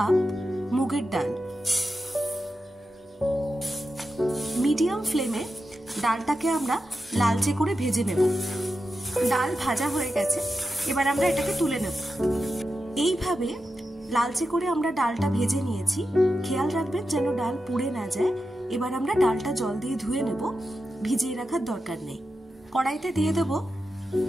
মুগের ডাল। মিডিয়াম ফ্লেমে ডালটাকে আমরা লালচে করে ভেজে নেব। ডাল ভাজা হয়ে গেছে, এবার আমরা এটাকে তুলে নেব। এইভাবে লালচে করে আমরা ডালটা ভেজে নিয়েছি। খেয়াল রাখবেন যেন ডাল পুড়ে না যায়। এবার আমরা ডালটা জল দিয়ে ধুয়ে নেব, ভিজিয়ে রাখার দরকার নেই। কড়াইতে দিয়ে দেব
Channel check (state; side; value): normal; both; correlation 0.90